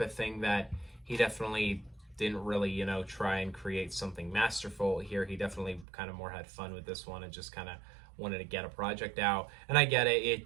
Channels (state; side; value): drops out; left; at 5.9 s